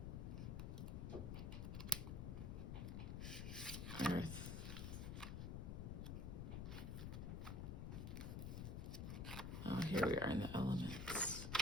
Earth. Oh, here we are in the elements.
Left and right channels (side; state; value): left; noise; rumble, 3 dB below the sound